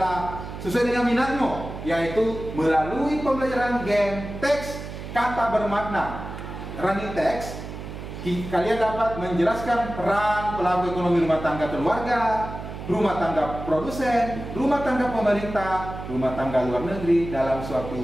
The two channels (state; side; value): noise; right; hum, 10 dB below the sound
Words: sesuai dengan minatmu, yaitu melalui pembelajaran game teks kata bermakna running text. Kalian dapat menjelaskan peran pelaku ekonomi rumah tangga keluarga, rumah tangga produsen, rumah tangga pemerintah, rumah tangga luar negeri dalam